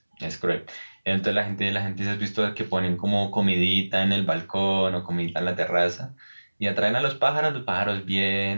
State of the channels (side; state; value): both; inverted; correlation -1.00